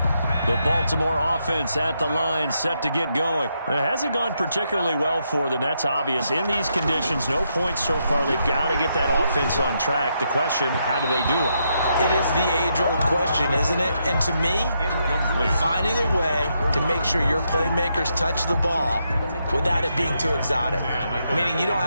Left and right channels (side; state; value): both; inverted; correlation -0.80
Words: The Baltimore offense at the line, set to get going. It hasn't gone particularly well for them. That's obvious. In these conditions, no points so far. They've got to get that offense on track. The question, how do they do it? It is the age-old question, isn't it? And to me, finding a way to make sure your playmakers touch the ball without it being too exotic. Meaning you don't